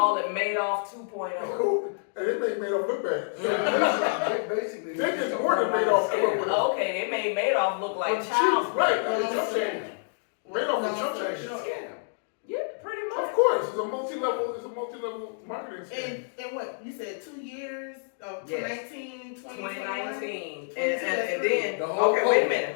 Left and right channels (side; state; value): right; silent; digital silence